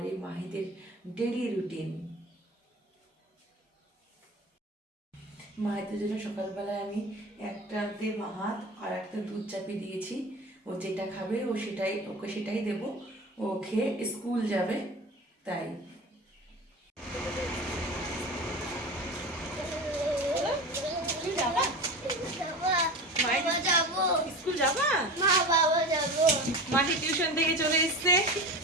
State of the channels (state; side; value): normal; both; correlation 0.31